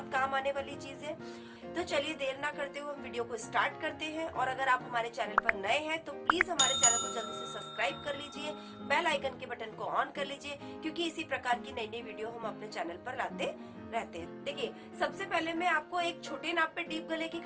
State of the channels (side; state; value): both; identical; correlation 1.00